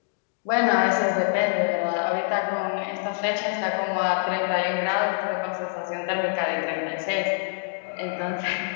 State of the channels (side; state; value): right; silent; digital silence